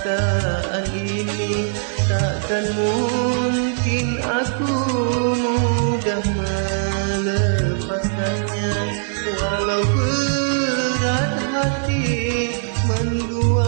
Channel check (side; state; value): left; silent; digital silence